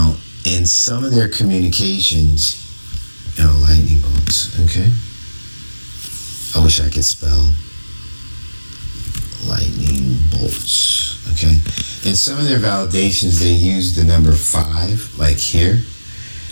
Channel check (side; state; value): both; inverted; correlation -1.00